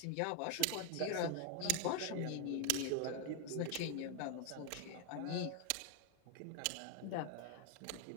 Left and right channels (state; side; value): different; both; correlation 0.01